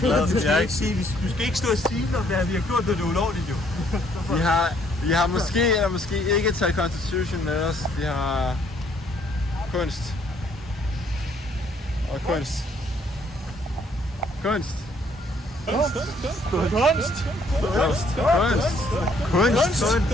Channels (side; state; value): both; normal; correlation 0.66